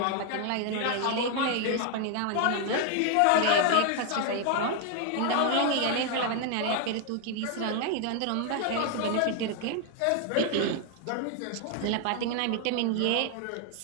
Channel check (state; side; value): different; both; correlation 0.00